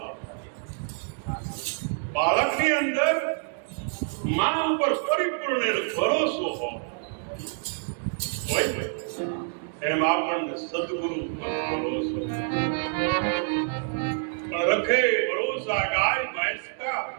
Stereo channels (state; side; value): silent; left; 60 dB below the other